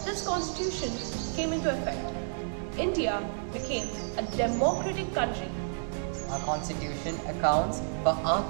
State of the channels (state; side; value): silent; left; digital silence